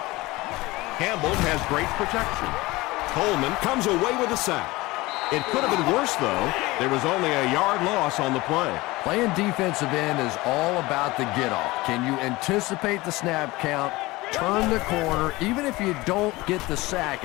Campbell has great protection. Coleman comes away with a sack. It could have been worse, though. There was only a yard loss on the play. Playing defensive end is all about the get-off. Can you anticipate the snap count, turn the corner, even if you don't get the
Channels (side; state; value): right; quieter; 20.8 dB